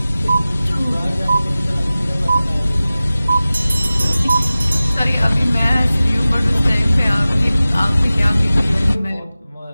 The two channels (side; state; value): both; inverted; correlation -0.97